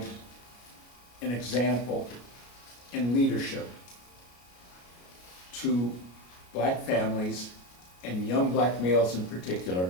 an example in leadership to black families and young black males in particular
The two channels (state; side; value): late; right; 33 ms